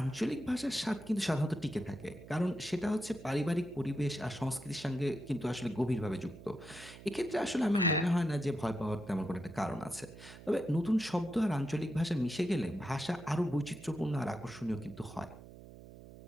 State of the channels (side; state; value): right; noise; hum, 17 dB below the sound